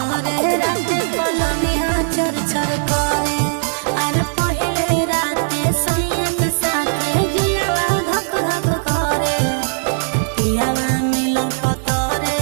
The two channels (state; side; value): silent; left; digital silence